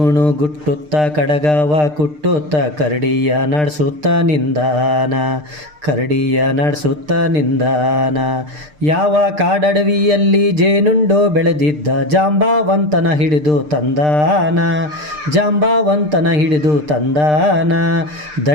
ಗುಟ್ಟುತ್ತ ಕಡಗವ ಕುಟ್ಟುತ್ತ ಕರಡಿಯ ನಡೆಸುತ್ತ ನಿಂದಾನ, ಕರಡಿಯ ನಡೆಸುತ್ತ ನಿಂದಾನ. ಯಾವ ಕಾಡಡವಿಯಲ್ಲಿ ಜೇನುಂಡು ಬೆಳೆದಿದ್ದ ಜಾಂಬಾವಂತನ ಹಿಡಿದು ತಂದಾನ, ಜಾಂಬಾವಂತನ ಹಿಡಿದು ತಂದಾನ.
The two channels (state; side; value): late; left; 6.6 ms